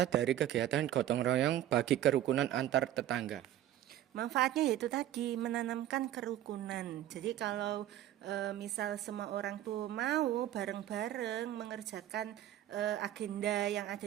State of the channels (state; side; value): quieter; left; 12.5 dB